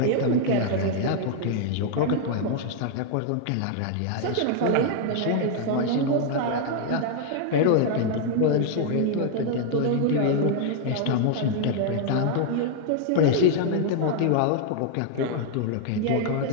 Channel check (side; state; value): both; different; correlation 0.00